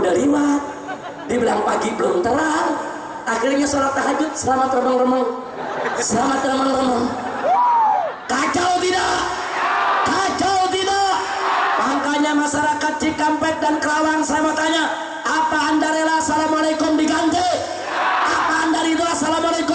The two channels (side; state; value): both; identical; correlation 1.00